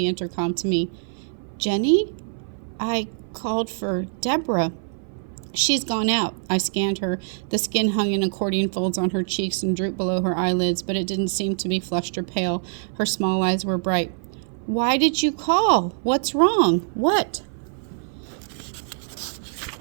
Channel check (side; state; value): left; silent; 56 dB below the other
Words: intercom to me. "Jenny? I called for Deborah." "She's gone out." I scanned her. The skin hung in accordion folds on her cheeks and drooped below her eyelids, but it didn't seem to be flushed or pale. Her small eyes were bright. "Why did you call? What's wrong? What?"